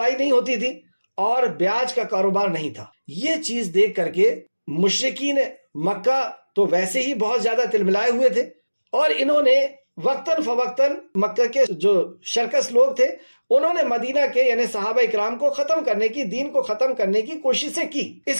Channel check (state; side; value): inverted; both; correlation -1.00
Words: نہیں ہوتی تھی، اور بیاج کا کاروبار نہیں تھا۔ یہ چیز دیکھ کر کے مشرکین مکہ تو ویسے ہی بہت زیادہ تلملائے ہوئے تھے، اور انہوں نے وقتاً فوقتاً مکہ کے جو شرکس لوگ تھے انہوں نے مدینہ کے یعنی صحابہ اکرام کو ختم کرنے کی، دین کو ختم کرنے کی کوششیں کی۔ اس